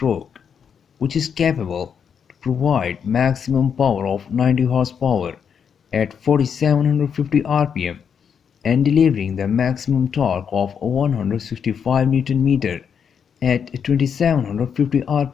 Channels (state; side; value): quieter; right; 7.2 dB